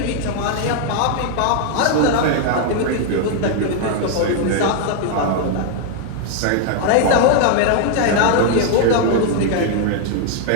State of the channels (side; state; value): both; different; correlation 0.00